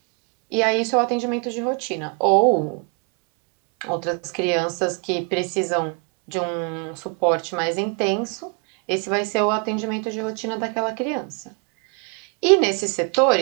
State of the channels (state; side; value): quieter; left; 35.2 dB